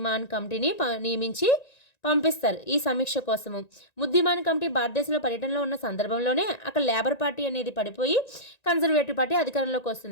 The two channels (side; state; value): right; late; 1.9 ms